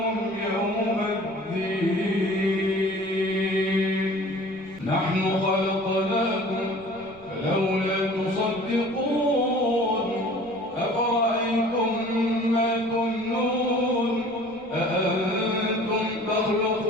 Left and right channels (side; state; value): right; noise; rumble, 26 dB below the sound